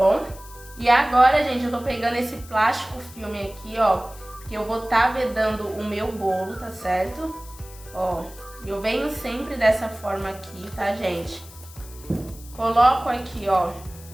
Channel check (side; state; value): left; noise; hiss, 19 dB below the sound